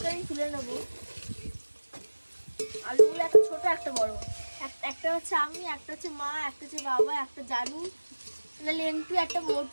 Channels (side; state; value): both; inverted; correlation -1.00